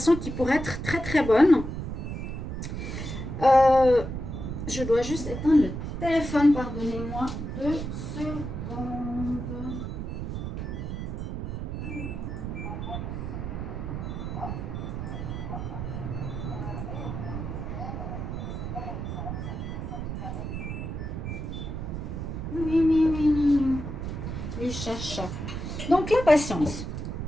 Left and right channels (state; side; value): noise; right; rumble, 5 dB below the sound